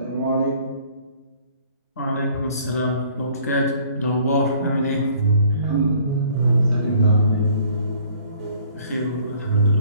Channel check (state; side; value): inverted; both; correlation -0.57